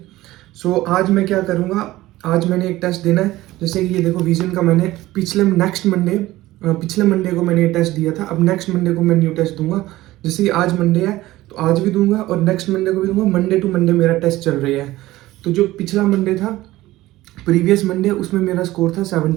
So आज मैं क्या करूँगा, आज मैंने एक टेस्ट देना है। जैसे कि ये देखो विजन का मैंने पिछले मंडे को मैंने ये टेस्ट दिया था। अब नेक्स्ट मंडे को मैं न्यू टेस्ट दूंगा। जैसे कि आज मंडे है तो आज भी दूंगा और नेक्स्ट मंडे को भी दूंगा। मंडे टू मंडे मेरा टेस्ट चल रही है। तो जो पिछला मंडे था, प्रीवियस मंडे, उसमें मेरा स्कोर था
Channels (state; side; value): quieter; left; 17.0 dB